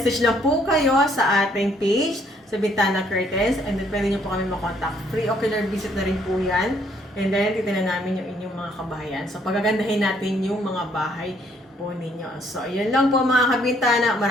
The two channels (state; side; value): normal; both; correlation 0.66